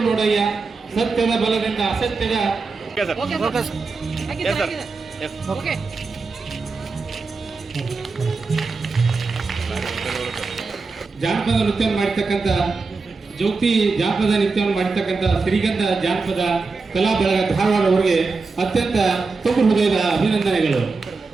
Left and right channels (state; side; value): quieter; left; 4.2 dB